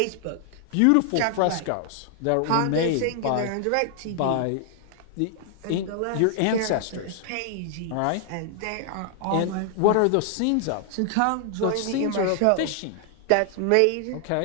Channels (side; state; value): both; different; correlation 0.00